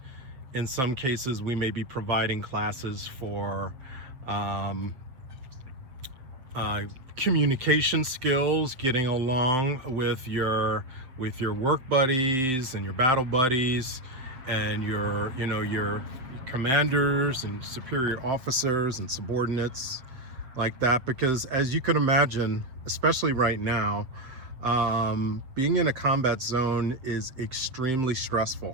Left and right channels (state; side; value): late; left; 8.0 ms